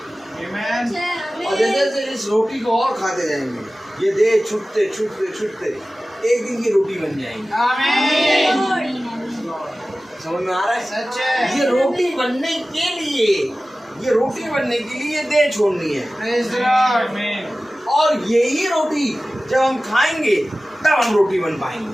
आमीन। और जैसे जैसे इस रोटी को और खाते जाएंगे, ये देह छूटते छूटते छूटते एक दिन की रोटी बन जाएंगी। आमीन। समझ में आ रहा है? सच है। ये रोटी बनने के लिए, ये रोटी बनने के लिए देह छोड़नी है। Praise the Lord. और यही रोटी जब हम खाएंगे तब हम रोटी बन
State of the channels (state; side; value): normal; both; correlation 0.96